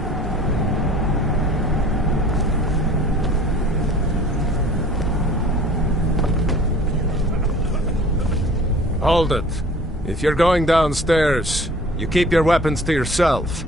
Hold it. If you're going downstairs, you keep your weapons to yourself,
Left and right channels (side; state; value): both; normal; correlation 0.48